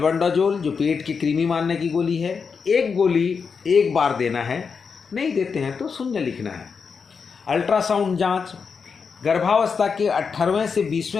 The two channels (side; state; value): right; quieter; 5.7 dB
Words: जो पेट की कृमि मारने की गोली है, 1 गोली एक बार देना है। नहीं देते हैं तो 0 लिखना है। अल्ट्रासाउंड जांच गर्भावस्था के 18वें से